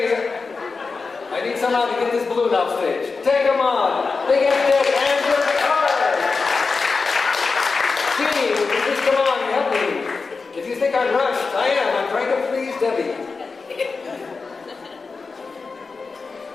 I need someone to get this balloon off stage. Take them on. Big F-Deck and your card. Gee, would you just come on and help me? If you think I'm rushed, I am. I'm trying to please Debbie.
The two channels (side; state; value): right; quieter; 4.4 dB